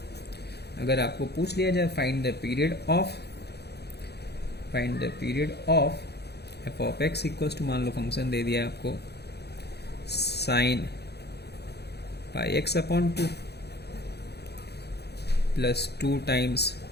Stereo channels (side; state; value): right; late; 0.48 ms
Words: अगर आपको पूछ लिया जाए find the period of f of x equals to, मान लो फंक्शन दे दिया है आपको sine pi x upon 2 plus 2 times